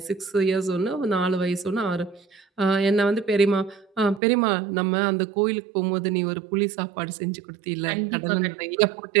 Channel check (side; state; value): left; drops out; at 4.2 s